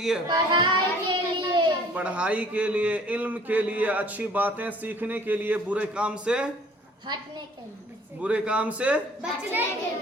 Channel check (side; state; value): both; normal; correlation 0.53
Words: पढ़ाई के लिए। पढ़ाई के लिए, इल्म के लिए, अच्छी बातें सीखने के लिए, बुरे काम से हटने के लिए, बुरे काम से बचने के